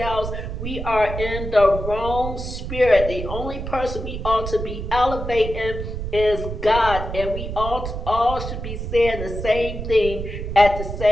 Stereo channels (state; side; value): noise; right; rumble, 6 dB below the sound